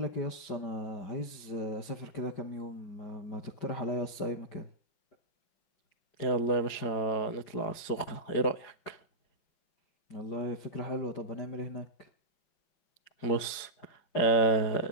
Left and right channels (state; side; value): late; right; 4.9 ms